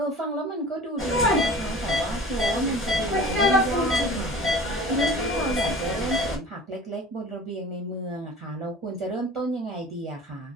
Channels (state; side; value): normal; both; correlation 0.41